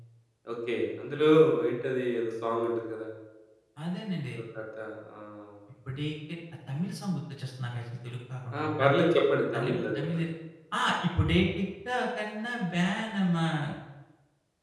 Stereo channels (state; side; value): identical; both; correlation 1.00